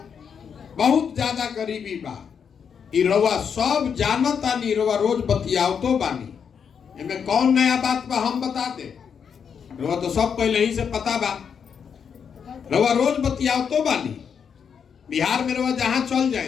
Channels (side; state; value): right; quieter; 7.0 dB